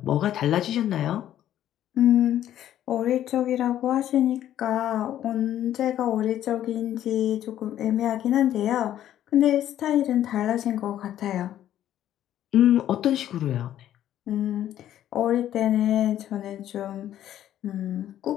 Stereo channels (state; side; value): quieter; right; 11.8 dB